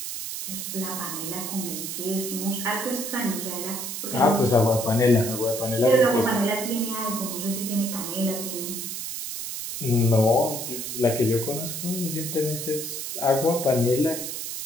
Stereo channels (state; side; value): noise; right; hiss, 5 dB below the sound